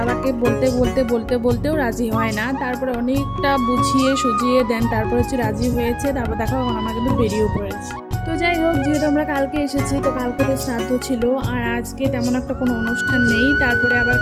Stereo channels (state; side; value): identical; both; correlation 1.00